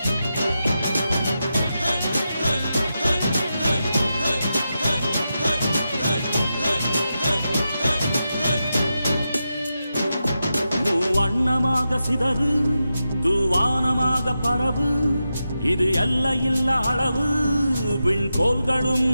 வண்ணமாக சிதறு தூவானமாக பரவு, இது எல்லையில்ல அளவு விண்கோள்களும்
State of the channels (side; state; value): both; inverted; correlation -0.89